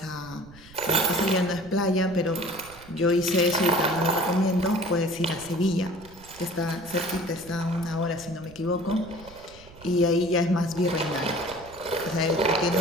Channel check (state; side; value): noise; right; rumble, 21 dB below the sound